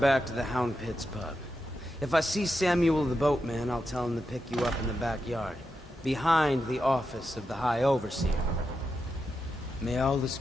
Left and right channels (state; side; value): normal; both; correlation 0.87